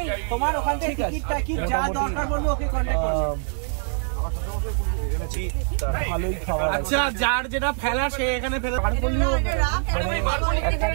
ঠিক আছে মোটামুটি ভালোই খাবার আছে। যার যেটা ফেলা সে এখানে ফেলে মানে একটা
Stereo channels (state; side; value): silent; left; 62 dB below the other